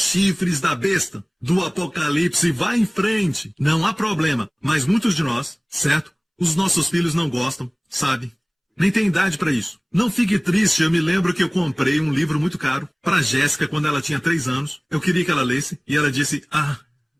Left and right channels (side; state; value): both; identical; correlation 1.00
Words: da besta do Apocalipse. Vá em frente. Não há problema. Mas muitos de nós, certo? Os nossos filhos não gostam, sabe? Nem tem idade para isso. Não fique triste, eu me lembro que eu comprei um livro muito caro para Jéssica quando ela tinha 3 anos. Eu queria que ela lesse e ela disse,